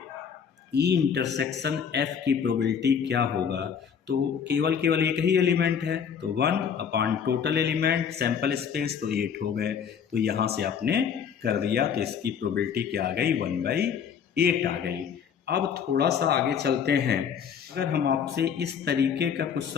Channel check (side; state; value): right; quieter; 7.4 dB